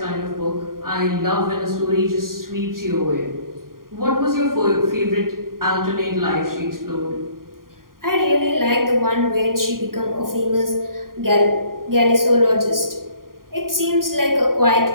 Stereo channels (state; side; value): late; left; 0.91 ms